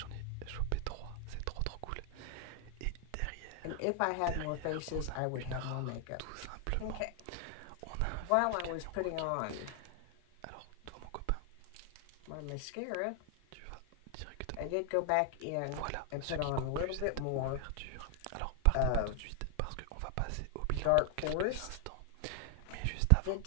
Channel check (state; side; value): different; both; correlation 0.00